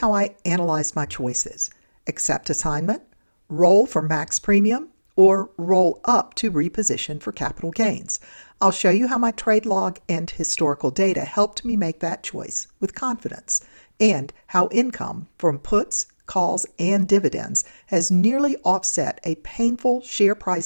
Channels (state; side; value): inverted; both; correlation -1.00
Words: I analyzed my choices: accept assignment, roll for max premium, or roll up to reposition for capital gains. I'll show you how my trade log and historical data helped me make that choice with confidence, and how income from puts, calls, and dividends has nearly offset a painful share